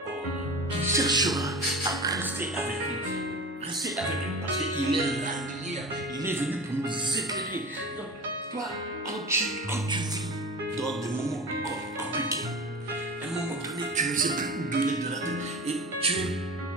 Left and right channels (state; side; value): normal; both; correlation 0.33